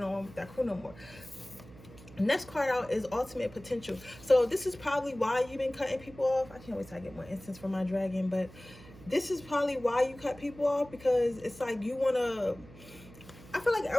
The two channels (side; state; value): right; noise; hum, 19 dB below the sound